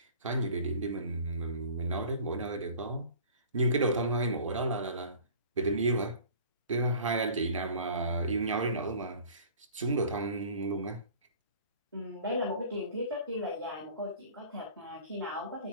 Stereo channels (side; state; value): both; inverted; correlation -0.46